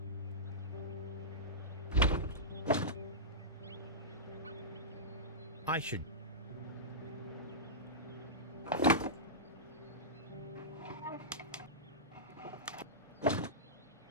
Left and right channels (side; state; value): both; normal; correlation -0.16